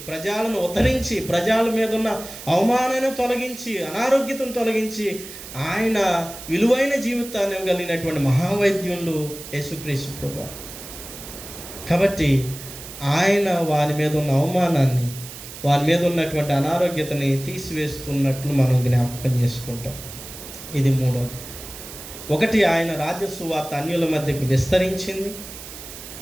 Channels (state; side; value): noise; right; hiss, 13 dB below the sound